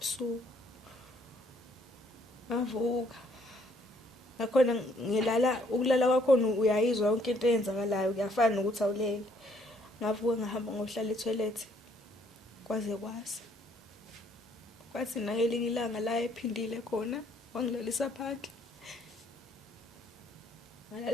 Avuka. Ngakhona ukulala kwakho uyayizwa yonke into eyenzakalayo kuyafana nokuthi awulele. Ngavuka ngahamba ngohlala etoilet. Kwaze kwasa. Kwathi nakelinye ilanga la ephindile khona wangilalisa phandle.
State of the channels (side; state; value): both; normal; correlation 0.66